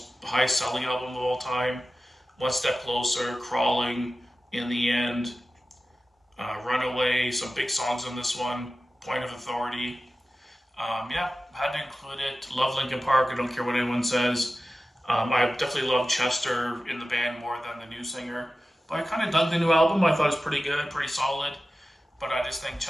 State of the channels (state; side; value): normal; both; correlation 0.95